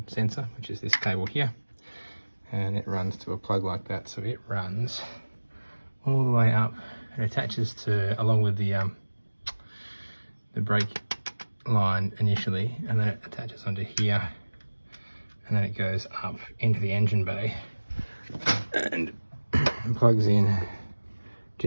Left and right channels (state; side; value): inverted; both; correlation -1.00